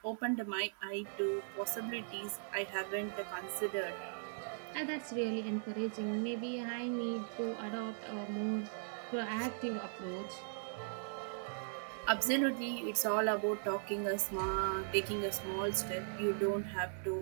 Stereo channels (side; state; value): left; silent; digital silence